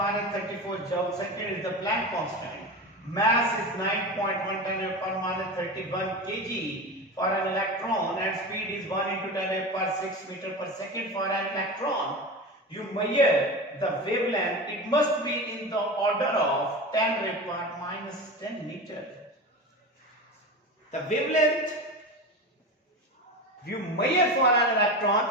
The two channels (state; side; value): normal; both; correlation 0.26